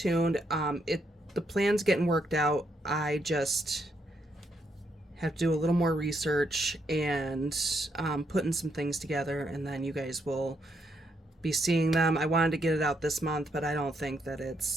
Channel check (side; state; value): both; normal; correlation 0.76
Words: The plan's getting worked out. I just have to do a little more research and putting some things together, and then you guys will be seeing them. I wanted to get it out this month, but I don't think that